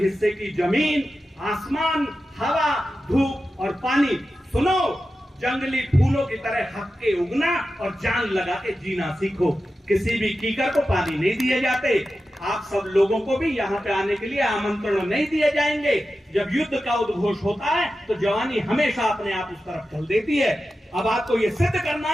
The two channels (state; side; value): normal; both; correlation 0.92